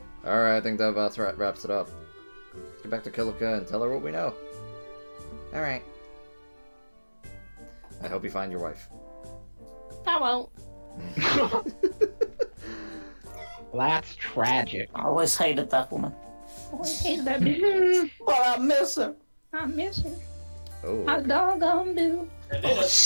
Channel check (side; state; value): both; inverted; correlation -1.00